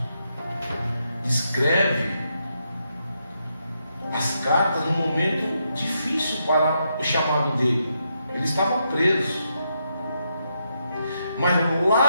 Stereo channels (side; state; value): both; inverted; correlation -0.81